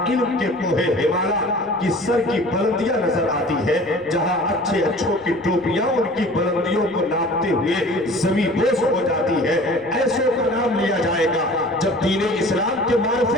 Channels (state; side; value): noise; left; rumble, 29 dB below the sound